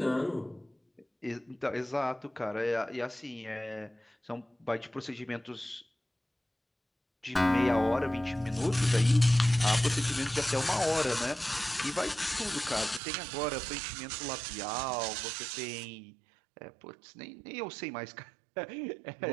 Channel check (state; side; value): drops out; left; at 13.0 s